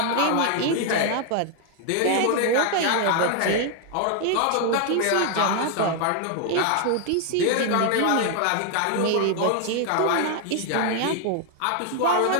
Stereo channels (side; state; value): both; different; correlation 0.00